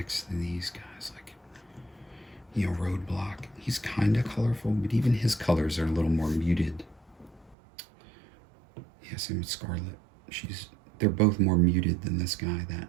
to these guys, like, you know, Roadblock. He's kind of colorful, but even his colors are a little more muted. Yeah, same with Scarlet. They're both more muted than this guy.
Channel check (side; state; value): left; drops out; at 7.6 s